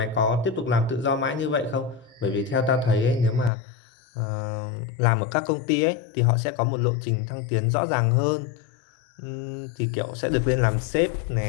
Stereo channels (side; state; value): right; drops out; at 3.5 s